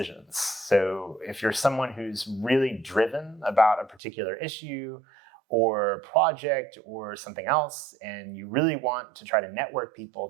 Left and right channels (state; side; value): drops out; left; at 4.0 s